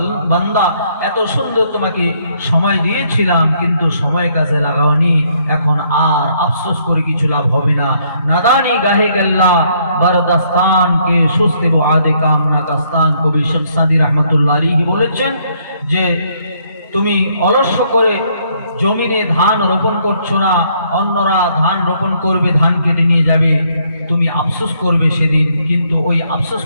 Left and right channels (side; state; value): both; inverted; correlation -0.69